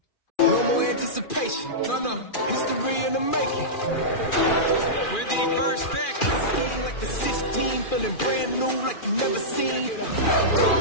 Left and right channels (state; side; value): late; right; 2.4 ms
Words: No more anticipation. No, no. History in the making. With the first pick. Scheme like the 16, feeling brand new like you never seen.